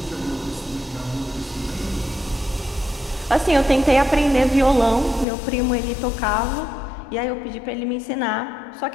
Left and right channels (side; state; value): right; drops out; at 5.2 s